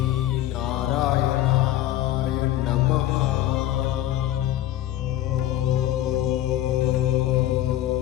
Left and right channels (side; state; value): right; quieter; 13.6 dB